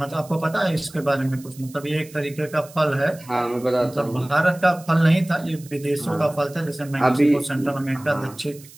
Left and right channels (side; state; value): right; noise; hiss, 21 dB below the sound